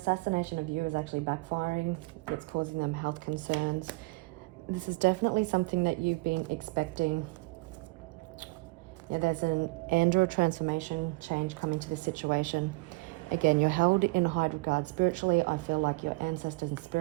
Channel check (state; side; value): quieter; left; 25.0 dB